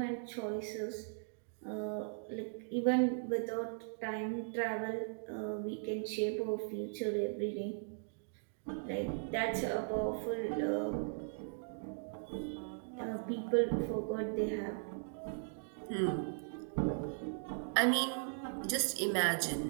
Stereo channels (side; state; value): left; silent; digital silence